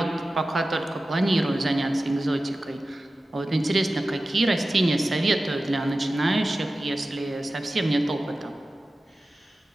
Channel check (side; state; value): both; normal; correlation 0.95